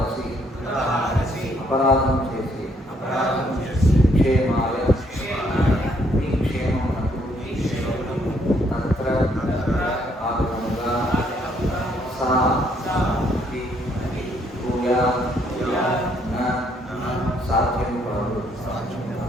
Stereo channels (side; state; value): both; normal; correlation 0.69